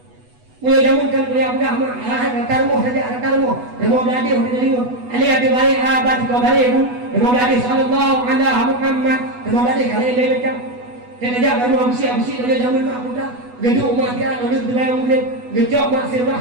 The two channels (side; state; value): left; late; 8.1 ms